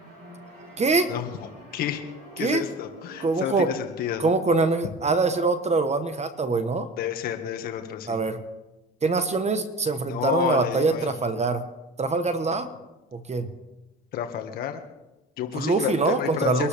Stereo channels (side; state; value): both; normal; correlation 0.34